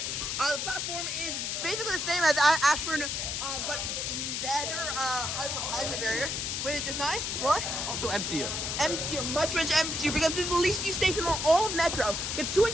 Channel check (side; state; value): left; noise; hiss, 2 dB below the sound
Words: The platform is basically the same as Ashburn, but better highway barriers, which is nice. What? Also emptier. Much emptier, because this is the least used station on all of Metro. It's